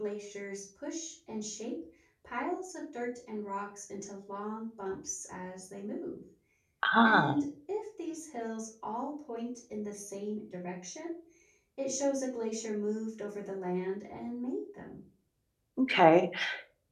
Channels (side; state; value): both; identical; correlation 1.00